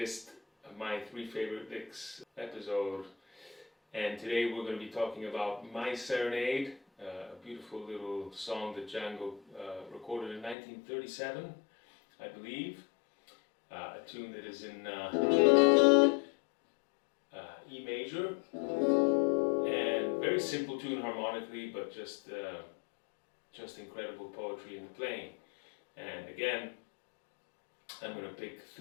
My Three Favorite Licks episode. And today we're going to be talking about My Serenade, a beautiful little song that Django recorded in 1937, I believe. A tune that is in E major, and very simple tune harmonically, but just incredible poetry in the playing. And again, I'm going to pick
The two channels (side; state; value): right; drops out; at 10.6 s